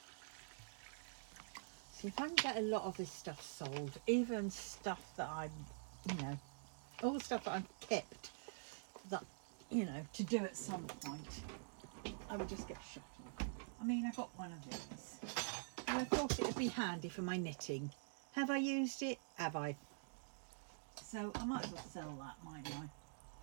see if I can get a lot of this stuff sold, even stuff that I'm, you know, all the stuff that I've kept that, you know, to do at some point, I would just get shot of. I mean, I got one of these and I thought it would be handy for my knitting. Have I used it? Have I? So I might as well sell that, mightn't I?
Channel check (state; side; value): silent; left; digital silence